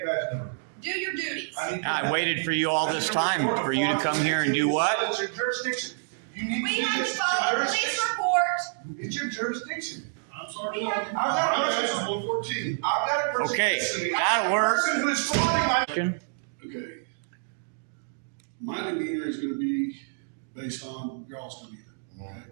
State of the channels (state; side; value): silent; left; digital silence